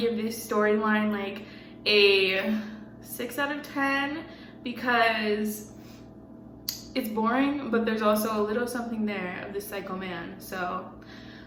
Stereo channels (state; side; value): identical; both; correlation 1.00